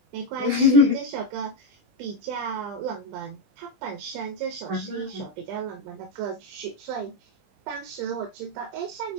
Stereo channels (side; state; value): left; late; 20 ms